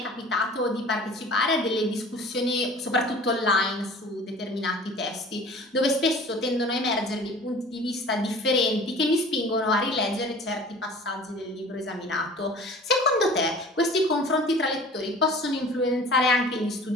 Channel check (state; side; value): normal; both; correlation 0.44